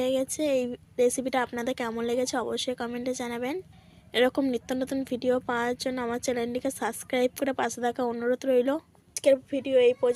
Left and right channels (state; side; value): identical; both; correlation 1.00